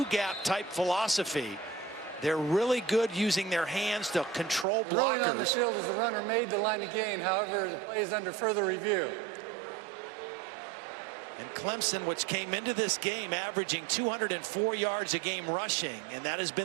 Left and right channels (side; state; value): left; drops out; at 4.7 s